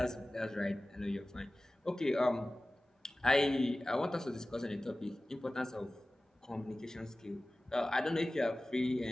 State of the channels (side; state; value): both; normal; correlation 0.97